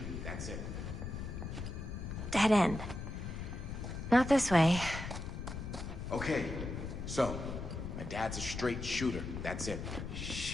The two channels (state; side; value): noise; left; rumble, 6 dB below the sound